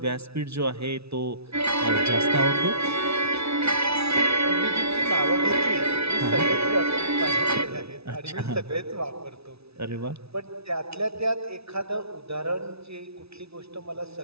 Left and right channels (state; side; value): late; left; 0.79 ms